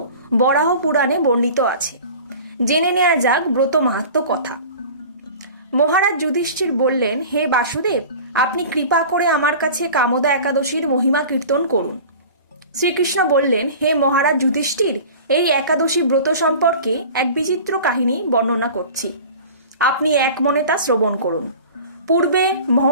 বরাহ পুরাণে বর্ণিত আছে। জেনে নেওয়া যাক ব্রত মাহাত্ম্য কথা। মহারাজ যুধিষ্ঠির বললেন, হে বাসুদেব, আপনি কৃপা করে আমার কাছে কামদা একাদশীর মহিমা কীর্তন করুন। শ্রীকৃষ্ণ বললেন, হে মহারাজ যুধিষ্ঠির, এই একাদশী ব্রত সম্পর্কে এক বিচিত্র কাহিনী বর্ণনা করছি, আপনি এক মনে তা শ্রবণ করুন। পূর্বে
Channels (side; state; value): both; inverted; correlation -0.40